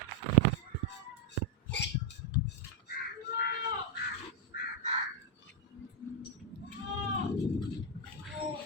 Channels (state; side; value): normal; both; correlation 0.00